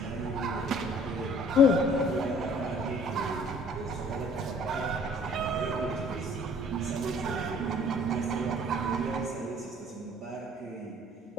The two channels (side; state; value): both; normal; correlation 0.54